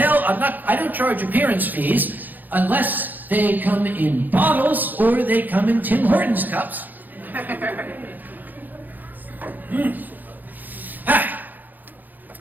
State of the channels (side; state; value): left; late; 0.085 ms